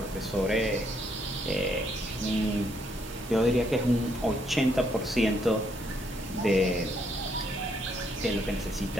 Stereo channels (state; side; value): normal; both; correlation 0.72